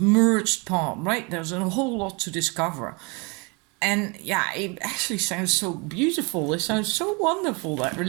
part, right? There's a whole lot to discover. And yeah, it actually sounds so beautiful. It sounds so wonderful, that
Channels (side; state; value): left; quieter; 30.2 dB